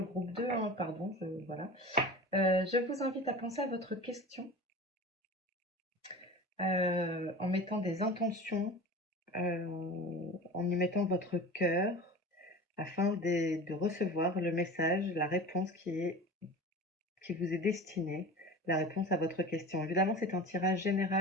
groupe 2, hein, pardon, voilà. Je vous invite à penser à votre question en mettant des intentions, en y mettant votre cœur, afin de recevoir le message, la réponse qui vous est destinée, la réponse à votre question. Évidemment, c'est un tirage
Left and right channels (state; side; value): normal; both; correlation 0.35